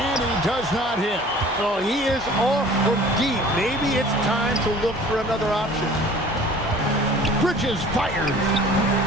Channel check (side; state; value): both; normal; correlation 0.48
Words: he does not hit. Oh, he is off from deep. Maybe it's time to look for another option. Bridges fires.